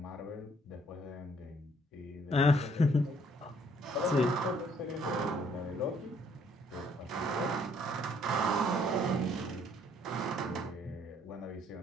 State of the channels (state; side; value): normal; both; correlation 0.64